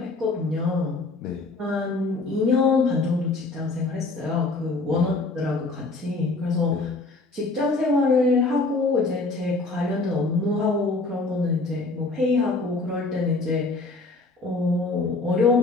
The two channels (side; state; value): right; quieter; 3.4 dB